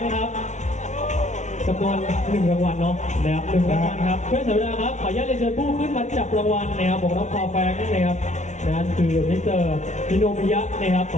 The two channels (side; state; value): right; late; 0.34 ms